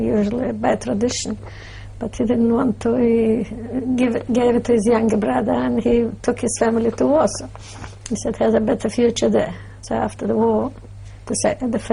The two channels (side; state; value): both; identical; correlation 1.00